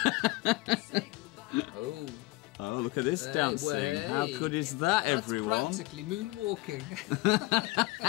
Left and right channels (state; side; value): quieter; right; 21.7 dB